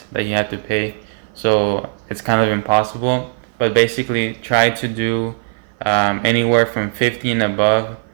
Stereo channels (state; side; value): silent; left; 56 dB below the other